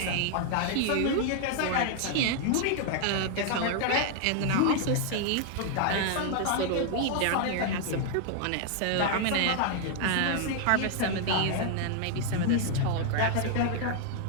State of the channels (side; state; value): both; different; correlation 0.00